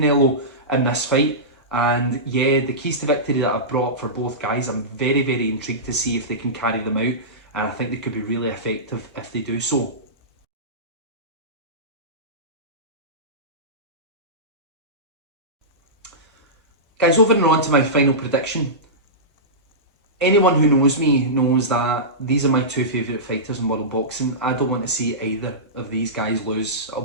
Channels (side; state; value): both; normal; correlation -0.17